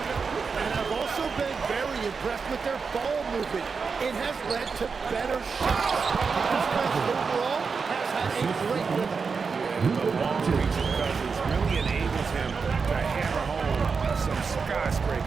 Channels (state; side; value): quieter; left; 5.2 dB